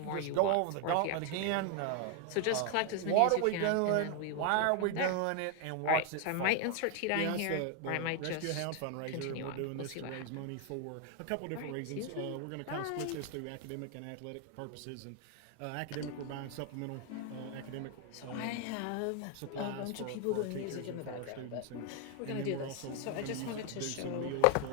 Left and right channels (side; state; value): both; different; correlation 0.01